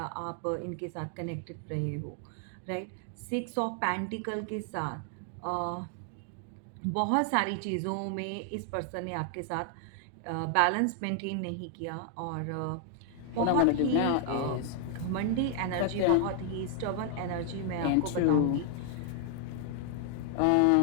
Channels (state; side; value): different; both; correlation 0.00